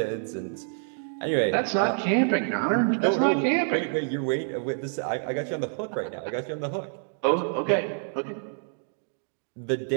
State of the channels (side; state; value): left; silent; digital silence